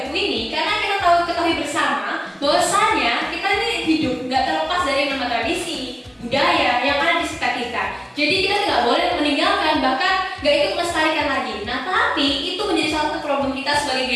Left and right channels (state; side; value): identical; both; correlation 1.00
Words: buku ini? Karena kita ketahui bersama bahwasanya kita ini hidup nggak terlepas dari nama tradisi, budaya yang ada di sekitar kita. Jadi kita tidak boleh meninggalkan, bahkan nggak ikut melestarikan lagi. Nah, tapi itu menjadi salah satu problem kita sebagai